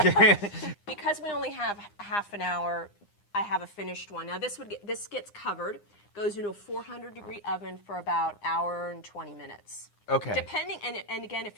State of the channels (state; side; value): late; right; 9.8 ms